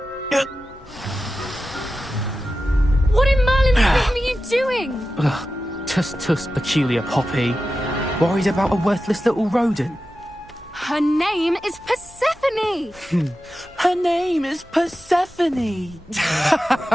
What in Merlin's name are you doing? Tuss, peculiar Poppy. Worried about a worthless little rodent? Her name is Persephone! Her name is Persephone!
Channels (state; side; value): normal; both; correlation 0.93